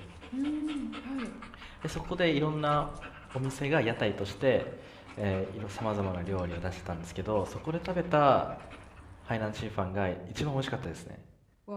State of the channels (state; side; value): identical; both; correlation 1.00